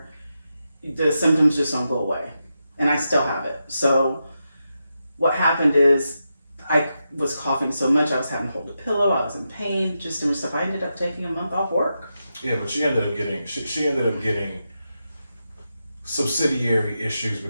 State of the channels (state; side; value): inverted; both; correlation -0.88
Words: the symptoms just don't go away, and I still have it. So what happened is I was coughing so much I was having to hold a pillow. I was in pain, just doing stuff. I ended up taking a month off work. Yeah, but she ended up getting subsidiary issues